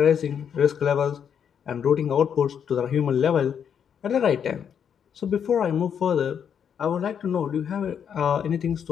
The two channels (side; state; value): right; quieter; 7.9 dB